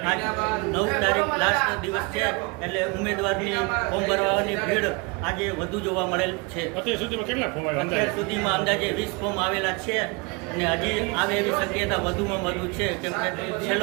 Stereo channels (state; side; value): quieter; left; 29.0 dB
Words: આજ 9 તારીખ લાસ્ટ દિવસ છે, એટલે ઉમેદવારની ફોર્મ ભરવાની ભીડ આજે વધુ જોવા મળેલ છે. અત્યાર સુધીમાં કેટલા ફોર્મ આવ્યા? અત્યાર સુધીમાં અંદાજે 20 ફોર્મ આવેલા છે અને હજી આવે એવી શક્યતા વધુમાં વધુ છે, કેમ કે